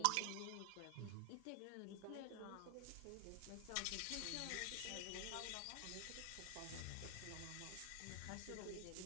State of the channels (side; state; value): both; different; correlation 0.00